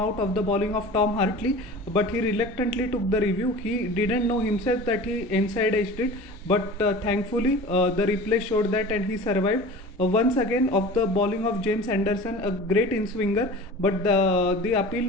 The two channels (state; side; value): normal; both; correlation 0.38